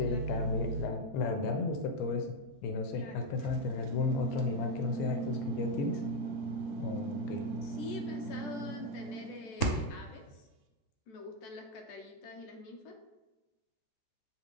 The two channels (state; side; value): late; right; 14 ms